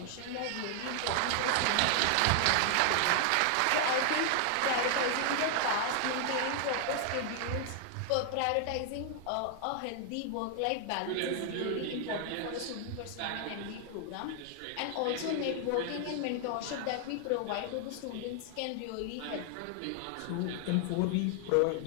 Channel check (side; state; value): both; different; correlation 0.00